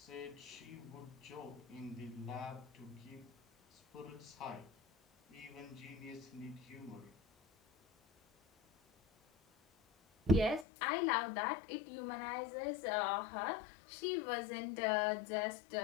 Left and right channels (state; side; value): drops out; right; at 10.7 s